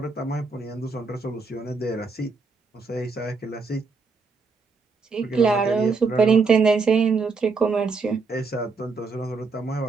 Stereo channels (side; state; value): left; quieter; 4.4 dB